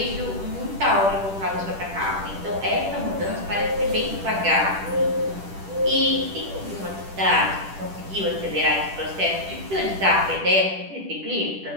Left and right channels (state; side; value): late; left; 10 ms